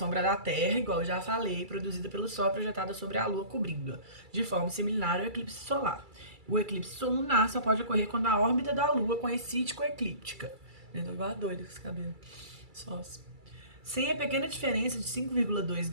da Terra, igual eu já falei, produzida pelo Sol, é projetada sobre a Lua, cobrindo-a, de forma similar ao eclipse solar. O eclipse lunar só pode ocorrer quando a órbita da Lua coincide com a eclíptica. Eu tô igual a doida com esse cabelo. Sócio. Sem a pequena diferença de 5,2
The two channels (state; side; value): late; left; 2.3 ms